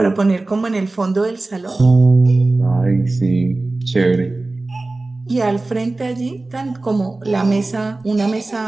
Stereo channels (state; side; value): quieter; left; 3.1 dB